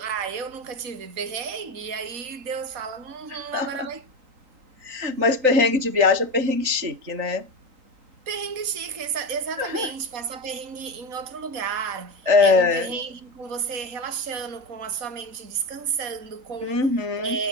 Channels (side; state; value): left; late; 3.9 ms